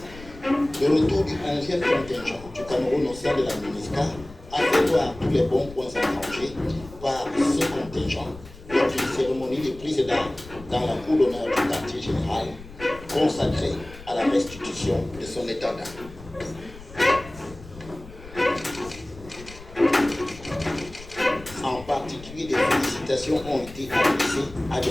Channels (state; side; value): noise; left; rumble, 17 dB below the sound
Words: Le retour du 11e contingent du Cameroun au sein de la MINUSCA a fait voir tous les bons points engrangés par ce contingent lors d'une cérémonie de prise d'armes dans la cour d'honneur du quartier général consacrée à la restitution de son état d'âme. En particulier, des félicitations ont été adressées à